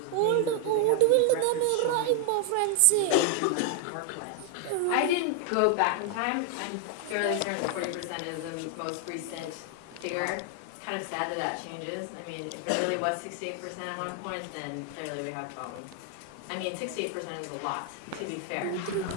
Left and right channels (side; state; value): both; different; correlation 0.00